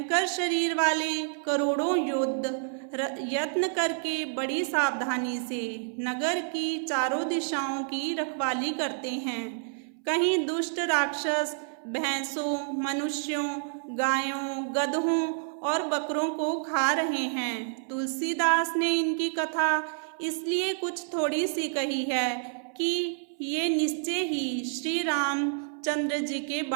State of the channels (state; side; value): silent; left; 59 dB below the other